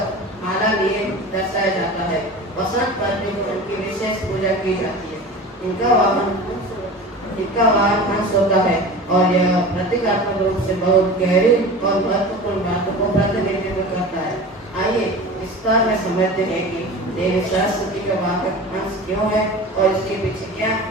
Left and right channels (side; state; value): both; normal; correlation 0.35